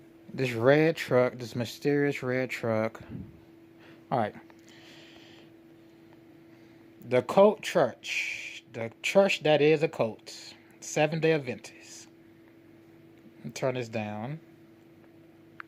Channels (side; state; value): both; identical; correlation 1.00